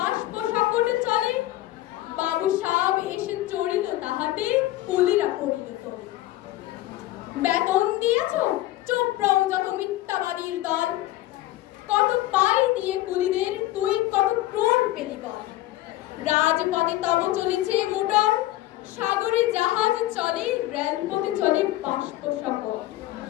সকল চলে, বাবু সাহেব এসে চড়িল তাহাতে, কুলিরা পড়িল তো। বেতন দিয়েছ, চুপ রও যত মিথ্যাবাদীর দল। কত পাই দিয়ে কুলিদের তুই কত ক্রোড় পেলি বল। রাজপথে তব চলেছে মোটর, সাগরে জাহাজ চলে, রেলপথে চলে বাষ্প সকল।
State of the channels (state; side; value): quieter; right; 16.0 dB